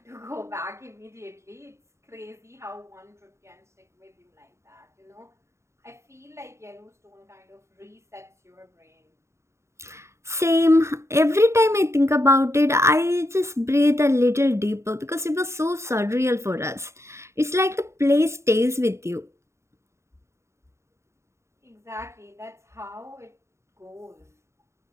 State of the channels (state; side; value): late; left; 0.14 ms